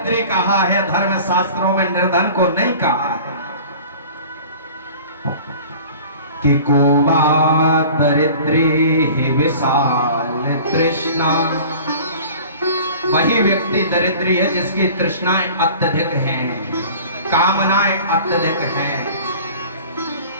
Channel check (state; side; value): inverted; both; correlation -0.43